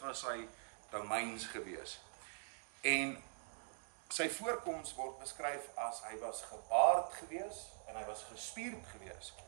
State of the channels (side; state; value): left; silent; digital silence